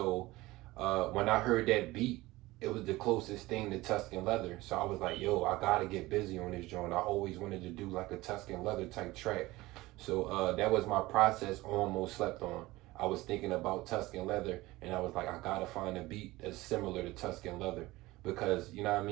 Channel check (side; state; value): left; quieter; 19.4 dB